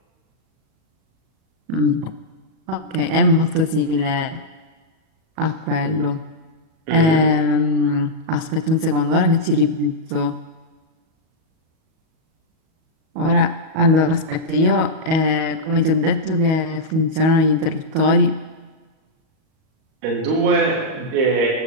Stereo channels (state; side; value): late; left; 37 ms